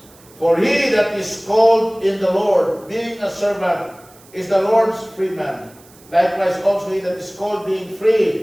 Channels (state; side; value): noise; right; hiss, 26 dB below the sound